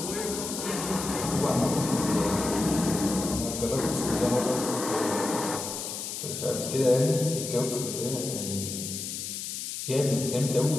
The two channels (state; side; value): noise; left; hiss, 6 dB below the sound